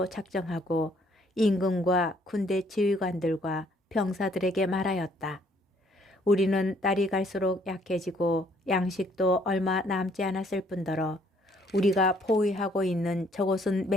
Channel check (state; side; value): normal; both; correlation 0.64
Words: 작정하고 임금과 군대 지휘관들과 병사들에게 말하였다. 우리는 날이 갈수록 약해지고 양식도 얼마 남지 않았을 뿐더러 우리가 포위하고 있는 저곳은